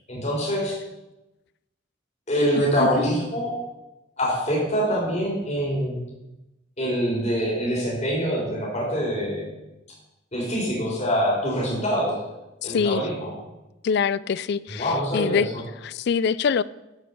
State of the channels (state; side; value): normal; both; correlation 0.22